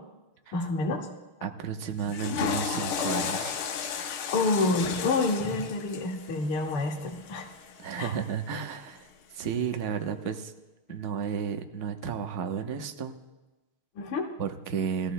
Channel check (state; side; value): late; right; 6.5 ms